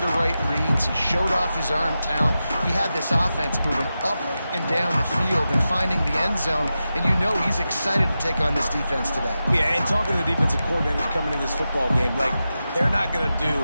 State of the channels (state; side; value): inverted; both; correlation -0.92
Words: right reads. He showed off his arm talent. He had this offense moving up and down the field and finding the end zone. And you know he's excited to take on this defense today. Yeah, and talking to the defensive coordinators coming into this football game, like, they're not going to do